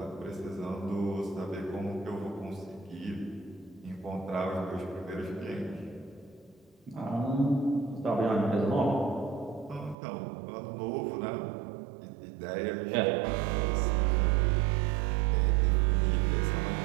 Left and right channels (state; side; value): drops out; left; at 10.0 s